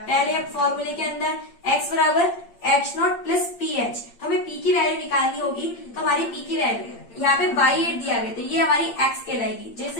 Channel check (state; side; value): late; right; 8.7 ms